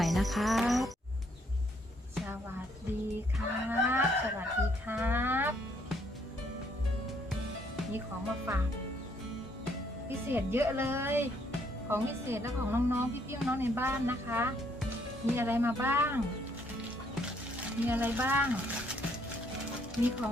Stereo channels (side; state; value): both; normal; correlation 0.69